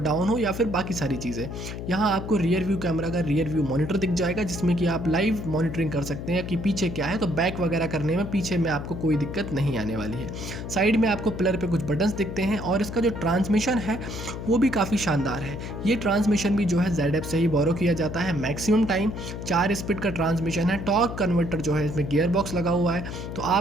डाउन हो, या फिर बाकी सारी चीज़ें। यहाँ आपको रियर व्यू कैमरा का रियर व्यू मॉनिटर दिख जाएगा, जिसमें कि आप लाइव मॉनिटरिंग कर सकते हैं कि पीछे क्या है। तो बैक वगैरह करने में पीछे में आपको कोई दिक्कत नहीं आने वाली है। साइड में आपको पिलर पे कुछ बटन्स दिखते हैं, और इसका जो ट्रांसमिशन है वो भी काफ़ी शानदार है। ये ट्रांसमिशन भी जो है ZF से ही बोरो किया जाता है। मैक्सिमम टाइम 4 स्पीड का ट्रांसमिशन है। टॉर्क कन्वर्टर जो है इसमें गियर बॉक्स लगा हुआ है, तो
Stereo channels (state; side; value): noise; left; hum, 7 dB below the sound